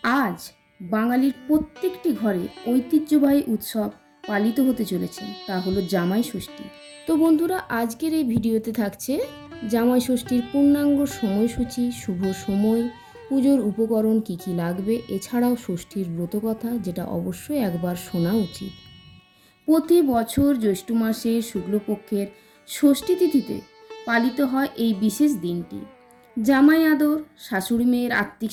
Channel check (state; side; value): identical; both; correlation 1.00